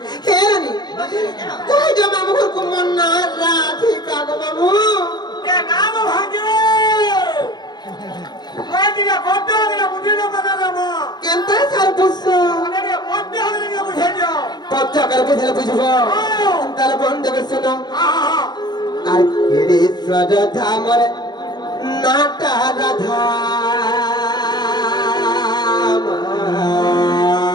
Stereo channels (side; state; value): right; late; 0.20 ms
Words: হে রানী কই যে মামু গো মন না রাধিকা গো মামু কে নাম হবে কই দিকে বদ্ধ হবে বুঝিলো কথা মামু কেনতা সার বুঝছো আরে বদ্ধ হবে না বুঝে যাও বদ্ধ করে বুঝলে বুঝবো তাহলে বন্ধ করে শোনো আর কেড়ে সরধা মরে নাটা রাধা